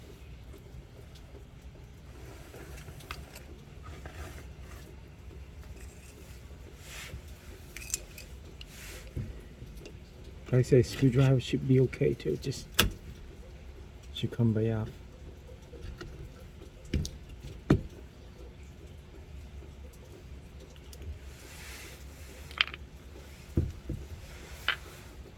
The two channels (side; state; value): both; identical; correlation 1.00